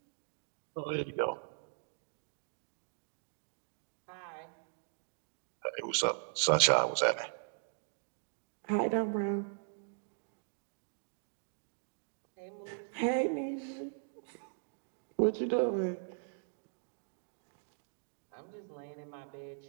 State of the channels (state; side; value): silent; left; digital silence